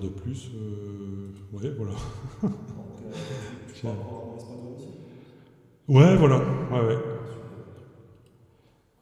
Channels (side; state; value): both; identical; correlation 1.00